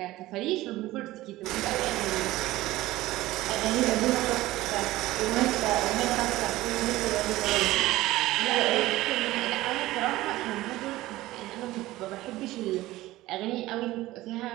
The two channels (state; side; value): quieter; left; 17.2 dB